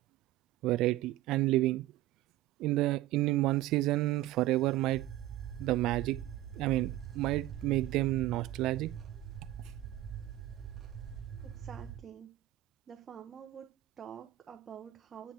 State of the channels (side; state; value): left; quieter; 15.6 dB